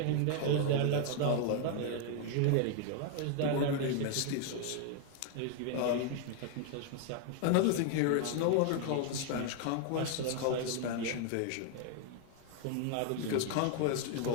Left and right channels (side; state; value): both; different; correlation 0.00